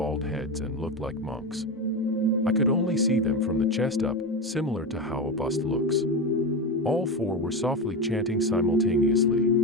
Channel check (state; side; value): normal; both; correlation 0.18